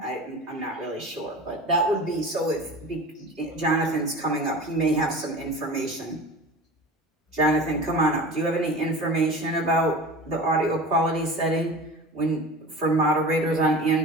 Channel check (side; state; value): both; normal; correlation 0.35